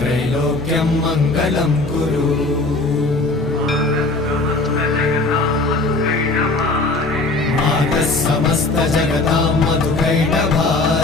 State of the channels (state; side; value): quieter; right; 3.2 dB